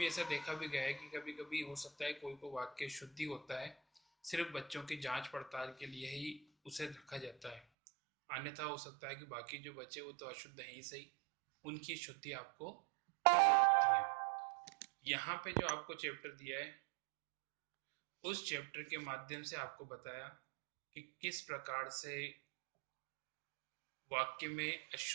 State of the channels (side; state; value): left; drops out; at 7.6 s